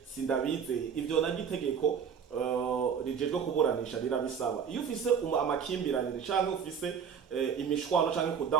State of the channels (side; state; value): left; quieter; 7.1 dB